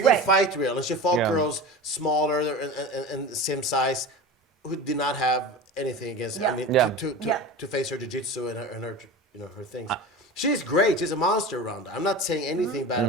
good fight reel. And she fought girls smaller and same size who did not have anything against her. I mean, to face her jiu-jitsu and her things. She's great. She's a monster, Ronda. I'm not saying anything bad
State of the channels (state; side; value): normal; both; correlation 0.31